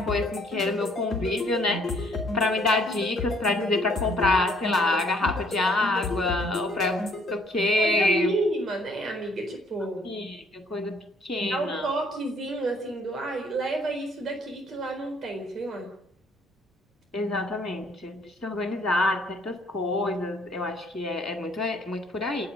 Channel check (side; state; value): both; normal; correlation 0.63